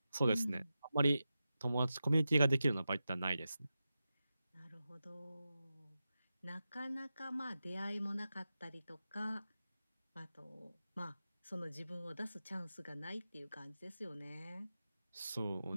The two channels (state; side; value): inverted; both; correlation -0.92